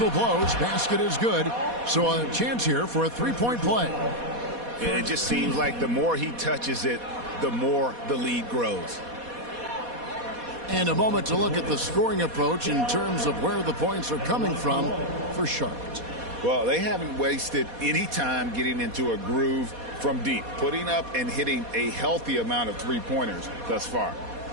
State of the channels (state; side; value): late; left; 4.2 ms